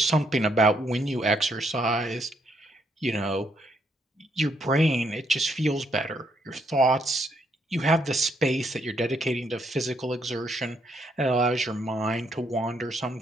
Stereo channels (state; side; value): normal; both; correlation 0.73